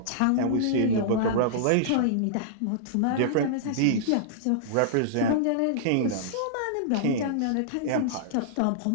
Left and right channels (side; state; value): both; different; correlation -0.02